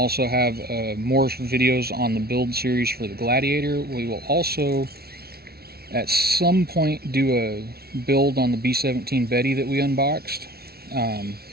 have more videos on the build series for the Gladiator. We will also at some point do a build on the B-17 Betty that we unboxed.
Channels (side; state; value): left; late; 0.45 ms